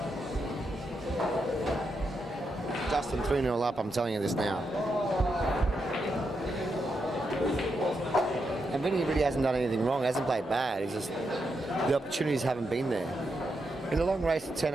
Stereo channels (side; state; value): both; normal; correlation 0.83